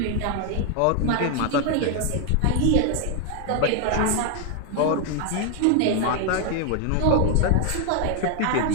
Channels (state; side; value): different; both; correlation 0.00